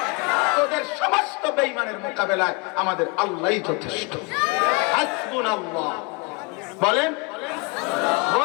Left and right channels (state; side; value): quieter; right; 29.1 dB